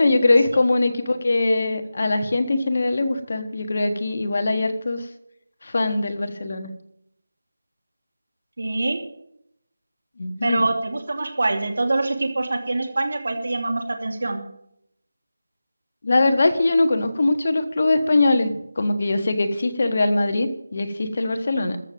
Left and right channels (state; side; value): inverted; both; correlation -0.94